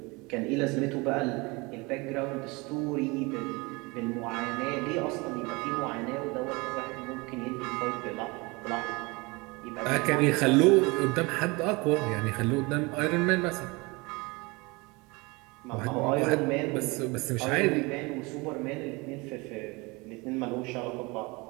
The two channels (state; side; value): quieter; left; 25.8 dB